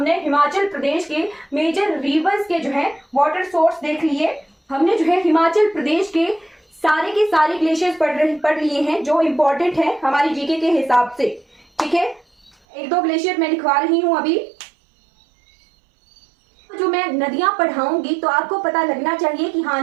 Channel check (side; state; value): left; drops out; at 12.6 s